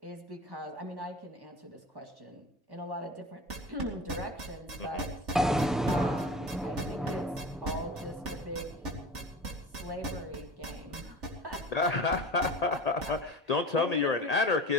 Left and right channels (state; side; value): normal; both; correlation 0.34